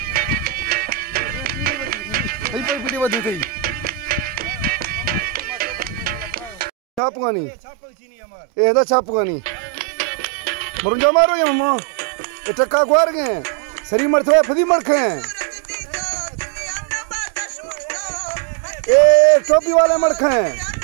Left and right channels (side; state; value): left; drops out; at 7.0 s